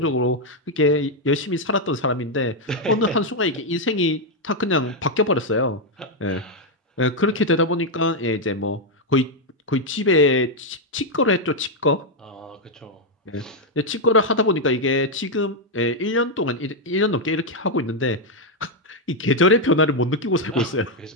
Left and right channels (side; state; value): both; normal; correlation 0.01